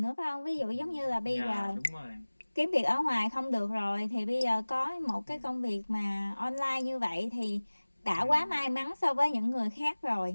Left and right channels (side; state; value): both; inverted; correlation -1.00